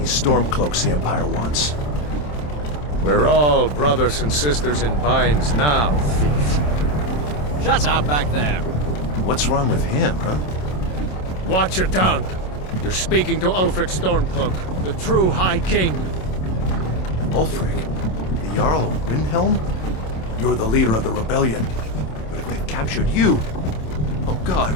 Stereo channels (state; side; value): late; right; 27 ms